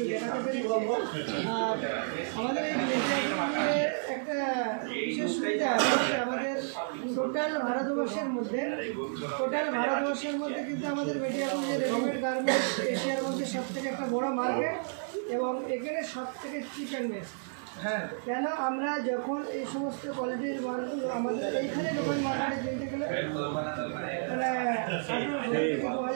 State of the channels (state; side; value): silent; left; digital silence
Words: দেখাতে পেরেছি। আর আমাদের এই মিডিয়াগুলোতে একটা বিশেষ সুবিধা আছে যে আমাদের টোটাল ভারতবর্ষের মধ্যে কিন্তু আমাদের মিডিয়াগুলো যে রেডিমেড গার্মেন্টস এশিয়ার মধ্যে সবথেকে একটা বড় মার্কেট, এবং এখানে সবথেকে চিপ অ্যান্ড বেস্ট। হ্যাঁ, কেন আমরা যখন এই সমস্ত কোয়ালিটির মালগুলো আমাদের এইখানে যখন মার্কেটে কিনতে গেলে মানে 1800 থেকে